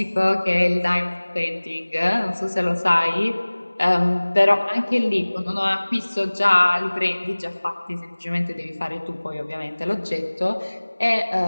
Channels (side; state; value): both; inverted; correlation -1.00